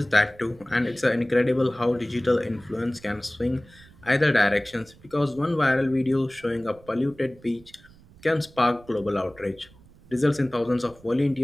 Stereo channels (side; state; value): right; noise; rumble, 25 dB below the sound